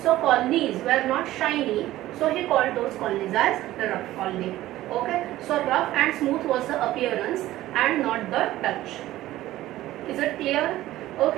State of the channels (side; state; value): left; quieter; 15.4 dB